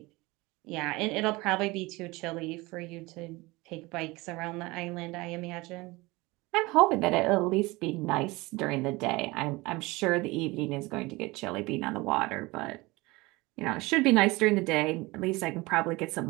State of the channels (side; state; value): left; quieter; 22.5 dB